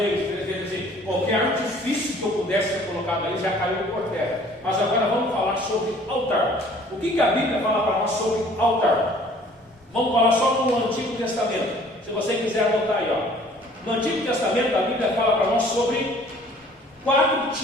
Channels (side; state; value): both; normal; correlation 0.54